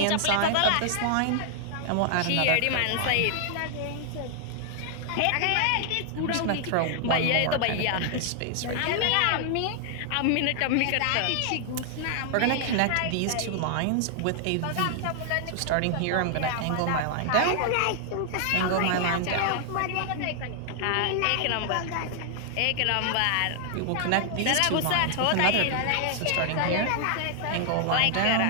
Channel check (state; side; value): different; both; correlation 0.00